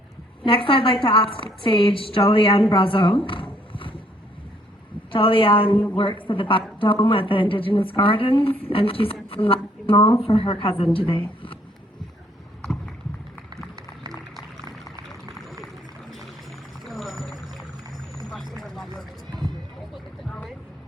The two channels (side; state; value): both; normal; correlation 0.65